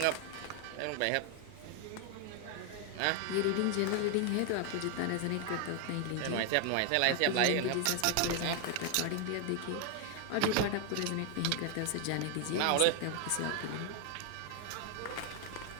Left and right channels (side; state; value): both; different; correlation 0.00